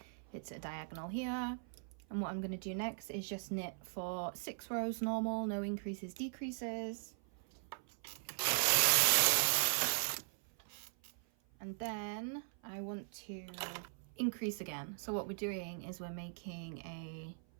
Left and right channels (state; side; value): silent; left; 51 dB below the other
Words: it's a diagonal here. And what I'm gonna do next is just knit for 6 rows normal, no increases, decreases. And then I want to increase again. So what we're doing is we're making a